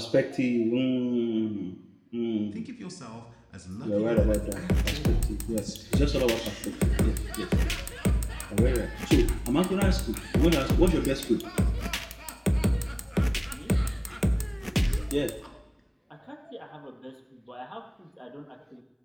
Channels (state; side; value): identical; both; correlation 1.00